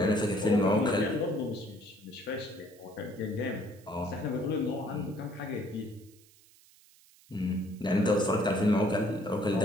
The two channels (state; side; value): noise; right; hiss, 27 dB below the sound